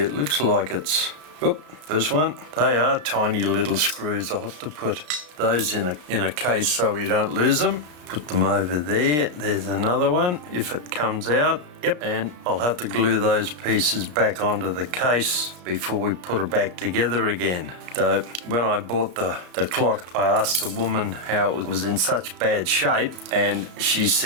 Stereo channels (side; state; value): left; late; 33 ms